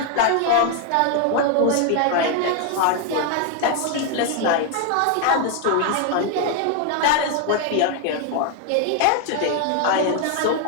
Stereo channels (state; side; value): different; both; correlation 0.00